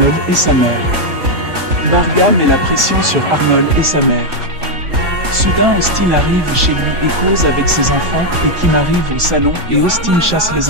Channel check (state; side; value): late; left; 3.5 ms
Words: et sa mère. Marga met la pression sur Arnold et sa mère. Soudain Austin arrive chez lui et cause avec ses enfants, et Kim arrive au salon et Austin chasse